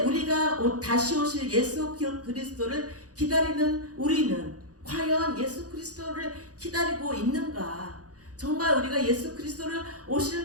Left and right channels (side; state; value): left; late; 0.67 ms